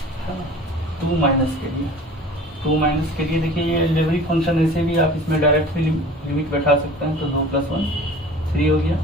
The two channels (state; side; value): normal; both; correlation 0.43